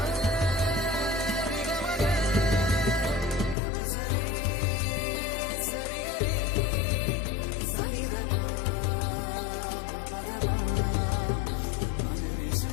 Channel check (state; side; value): drops out; right; at 3.6 s